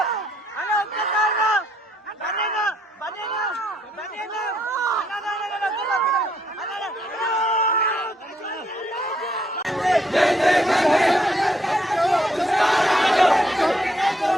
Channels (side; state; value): both; normal; correlation 0.72